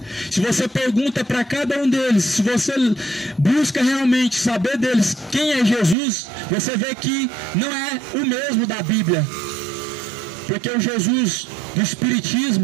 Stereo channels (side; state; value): left; drops out; at 6.0 s